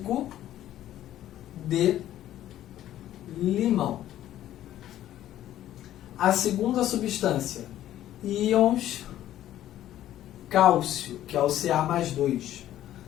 de limão. A segunda substância, íons cálcio, que é o Ca+2.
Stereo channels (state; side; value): quieter; right; 12.7 dB